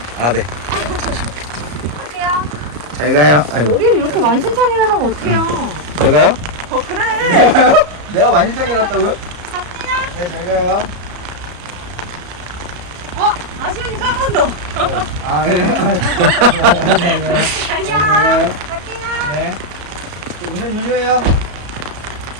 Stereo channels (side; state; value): left; late; 34 ms